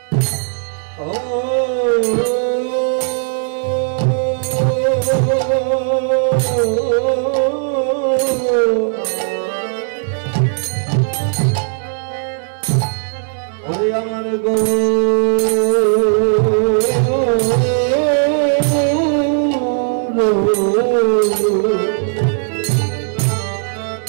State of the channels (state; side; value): silent; left; 68 dB below the other